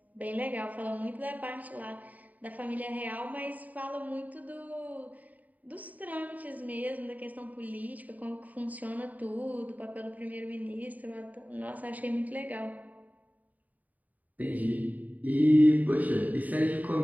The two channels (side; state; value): left; late; 0.075 ms